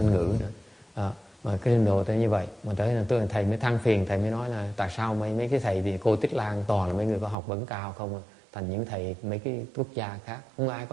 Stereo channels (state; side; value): drops out; left; at 7.4 s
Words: ngữ nữa. Mà cái trình độ tới như vậy, mà tới là tôi thầy mới than phiền, thầy mới nói là tại sao mấy cái thầy thì cô Tích Lan toàn là mấy người có học vấn cao không, thành những thầy mấy cái quốc gia khác